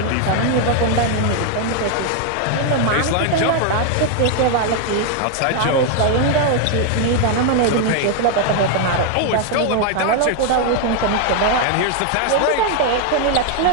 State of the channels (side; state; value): both; different; correlation 0.00